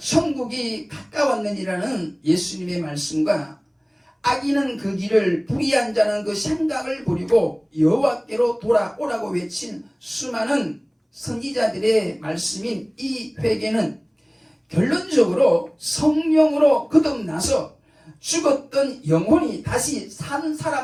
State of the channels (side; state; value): both; identical; correlation 1.00